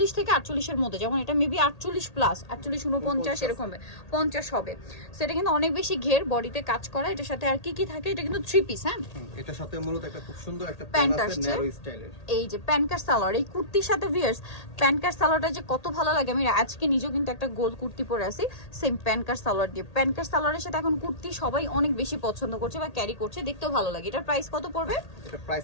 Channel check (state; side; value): late; right; 1.8 ms